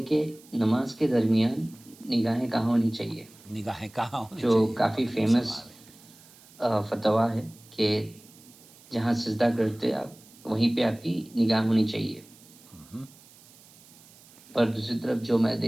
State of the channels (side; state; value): right; noise; hiss, 24 dB below the sound